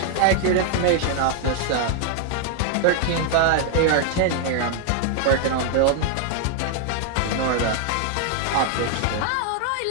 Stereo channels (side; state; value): both; different; correlation 0.00